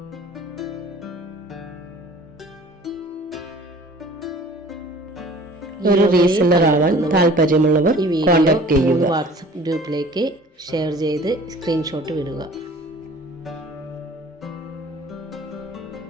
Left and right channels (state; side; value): normal; both; correlation 0.48